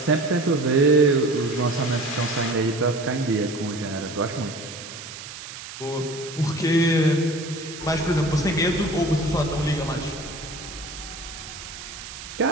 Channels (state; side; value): noise; right; hiss, 12 dB below the sound